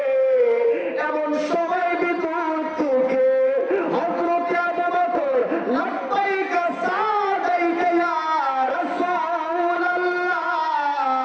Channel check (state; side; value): identical; both; correlation 1.00